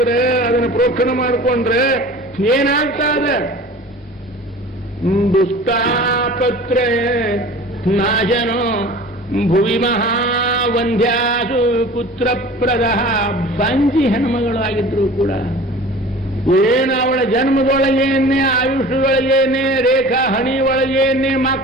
ಅದನ್ನ ಪ್ರೋಕ್ಷಣ ಮಾಡಿಕೊಂಡ್ರೆ ಏನಾಗ್ತದೆ? ದುಷ್ಟಾಪತ್ರ ನಾಶನೋ ಭುವಿ ಮಹಾವಂದ್ಯಾಸು ಪುತ್ರಪ್ರದ. ಬಂಜಿ ಹೆಣ್ಮಗಳಾಗಿದ್ರು ಕೂಡ ಏನು ಅವಳ ಜನ್ಮದೊಳಗೇನೆ ಆಯುಷ್ಯೊಳಗೇನೆ ರೇಖಾ ಹಣಿ ಒಳಗೇನೆ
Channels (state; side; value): normal; both; correlation 0.41